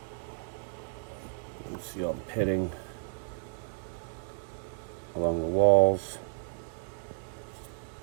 You can see all the pitting along the walls.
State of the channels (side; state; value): left; silent; 56 dB below the other